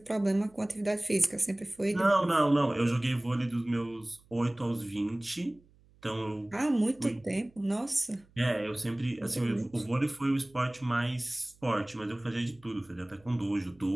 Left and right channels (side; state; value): right; noise; hum, 29 dB below the sound